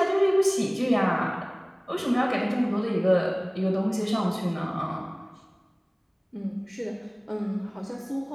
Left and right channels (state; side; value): identical; both; correlation 1.00